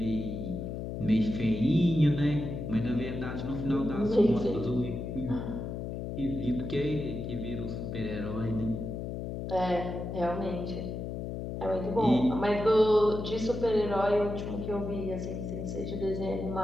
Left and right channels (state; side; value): noise; left; hum, 5 dB below the sound